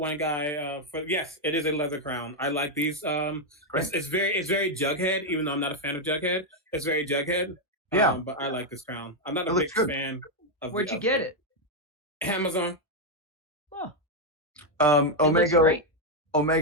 guy for yes, it is a leather crown. I like these. It's very Jughead, even though I'm not a fan of Jughead. It's very Jughead. Yeah, but I like this crown. I'm not It a looks big good. fan of. Where'd you get it? Amazon. Oh, it looks great.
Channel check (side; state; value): both; normal; correlation 0.01